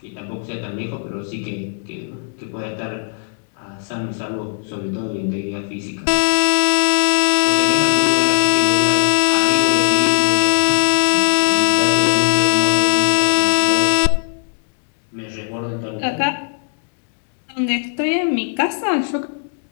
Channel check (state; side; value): silent; right; digital silence